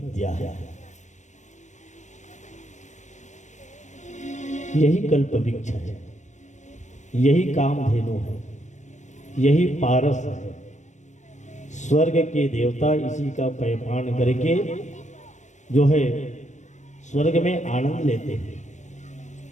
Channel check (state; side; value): late; right; 0.35 ms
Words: है। यही कल्प वृक्ष है, यही कामधेनु है, यही पारस है। स्वर्ग के देवता इसी का पैपान करके जो है स्वर्ग में आनंद लेते हैं।